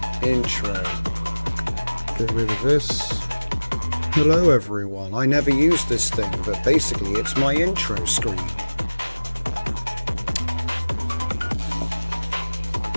Intro. Get rid of this. Hello everyone, I never used this thing, but basically it's my intro screen.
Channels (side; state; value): both; inverted; correlation -1.00